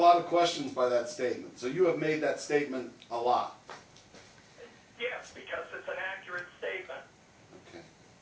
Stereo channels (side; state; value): both; identical; correlation 1.00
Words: of questions by that statement. So you have made that statement a lot. yes, because it's an accurate statement. Okay.